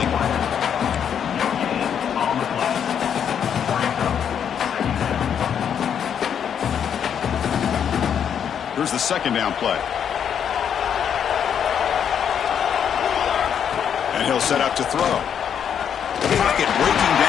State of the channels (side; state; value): right; quieter; 8.3 dB